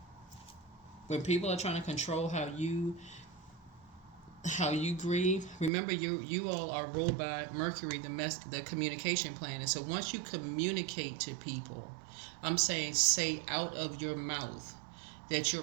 when people are trying to control how you grieve, remember you all are ruled by Mercury, the communication planet. So once you communicate to people, I'm saying say out of your mouth that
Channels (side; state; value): left; drops out; at 5.7 s